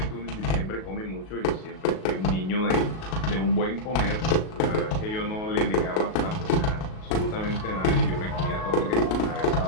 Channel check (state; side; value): late; right; 37 ms